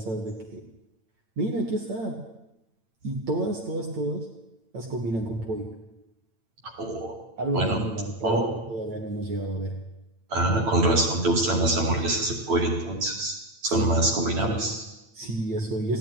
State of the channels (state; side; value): late; left; 8.9 ms